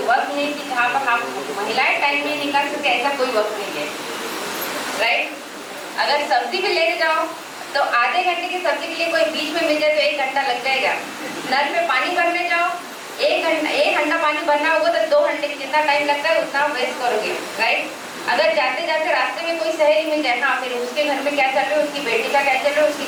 वक्त नहीं कि जहाँ पर हम महिलाएं टाइम नहीं निकाल सकते, ऐसा कोई वक्त नहीं है, राइट? अगर सब्जी भी लेने जाओ तो आधे घंटे की सब्जी के लिए कोई बीच में मिल जाए तो 1 घंटा लग जाएगा। नल में पानी भरने जाओ, 1 घंटा पानी भरना होगा तो 2 घंटे जितना टाइम लगता है उतना वेस्ट करोगे, राइट? अगर जाते जाते रास्ते में कोई सहेली मिल जाए, हाँ फिर उसके घर में क्या चल रहा है, उसकी बेटी का क्या चल रहा है,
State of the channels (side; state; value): both; identical; correlation 1.00